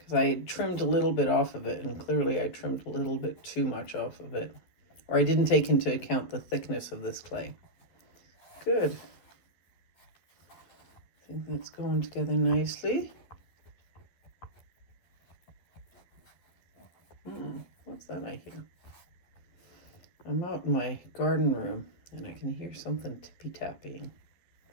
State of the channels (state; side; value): late; right; 11 ms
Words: I had trimmed a little bit off of it, and clearly I trimmed a little bit too much off of it. Or I didn't take into account the thickness of this clay. Good. I think that's going together nicely. What's that I hear? I'm out in my garden room and I can hear something tippy-tapping.